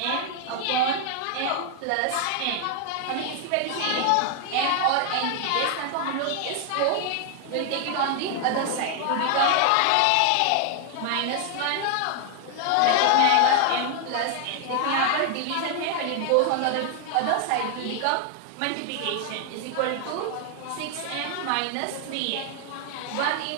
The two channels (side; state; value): both; different; correlation 0.00